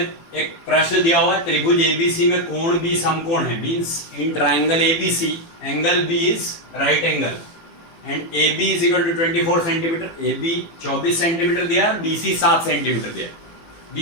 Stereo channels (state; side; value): late; right; 18 ms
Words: प्रश्न दिया हुआ है, त्रिभुज एबीसी में कोण बी समकोण है। Means in triangle ABC angle B is right angle and A B is equal to 24 centimetre. A B 24 centimetre दिया और बी सी 7 सेंटीमीटर दिया।